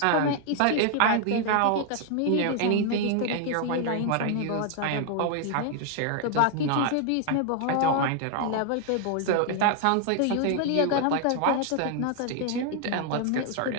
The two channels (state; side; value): different; both; correlation 0.00